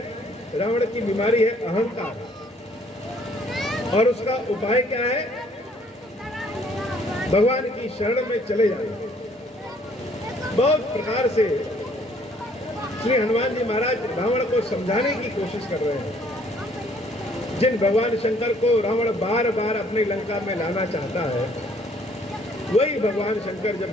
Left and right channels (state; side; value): normal; both; correlation 0.62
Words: रावण की बीमारी है अहंकार, और उसका उपाय क्या है? भगवान की शरण में चले जाना। बहुत प्रकार से श्री हनुमान जी महाराज रावण को समझाने की कोशिश कर रहे हैं। जिन भगवान शंकर को रावण बार बार अपनी लंका में लाना चाहता है, वही भगवान शंकर जब